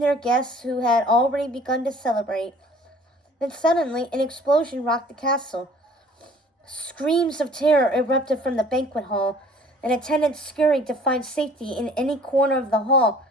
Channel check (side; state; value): both; normal; correlation 0.52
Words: their guests who had already begun to celebrate. Then suddenly an explosion rocked the castle. Screams of terror erupted from the banquet hall, and attendants scurried to find safety in any corner of the hall